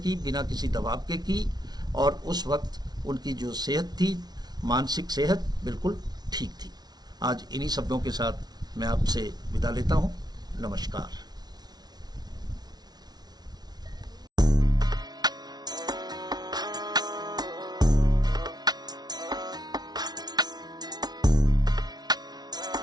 बिना किसी दबाव के की, और उस वक्त उनकी जो सेहत थी, मानसिक सेहत बिल्कुल ठीक थी। आज इन्हीं शब्दों के साथ मैं आपसे विदा लेता हूँ। नमस्कार।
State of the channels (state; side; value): late; left; 0.19 ms